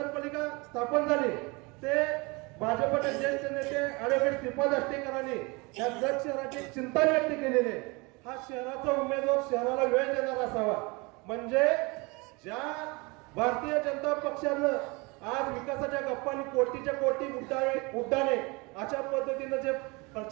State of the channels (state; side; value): quieter; left; 26.9 dB